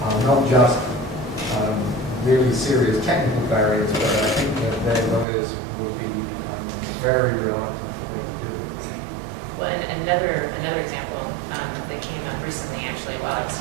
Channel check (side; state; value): left; drops out; at 5.2 s